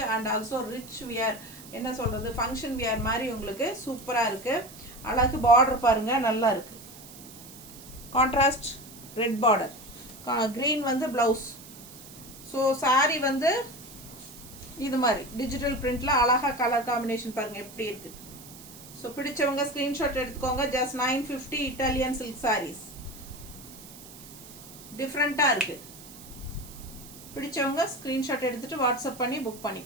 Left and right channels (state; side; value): noise; right; hiss, 17 dB below the sound